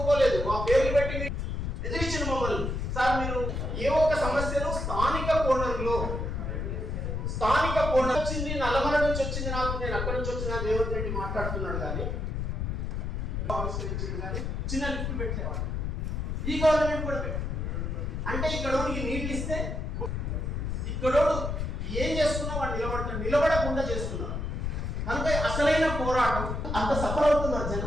మా పేర్లు పెట్టి ఎదిరించిన మమ్మల్ని. సార్ మీరు ఏ ఒక్క సమస్యను స్థానిక కోణంలో వచ్చింది, నల్లమల నుంచి వచ్చింది, నాకు నేను అక్కడి నుంచి వచ్చిన రేవంత్ రెడ్డి మాట్లాడుతున్నాడు కానీ చిన్న లిఫ్ట్ పెట్టేవాడు. ఈ గవర్నమెంట్ కూడా పెట్టారు. అంటే ఇక్కడోడికి నీళ్ళు ఇస్తే ఇక్కడోడు ఏం చేస్తున్నా వాడు నిలబడకుండా చేస్తున్నారు. కనుక అసలైన పోరాటం అంత సఫర్ అవుతున్నారు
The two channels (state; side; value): noise; left; rumble, 2 dB below the sound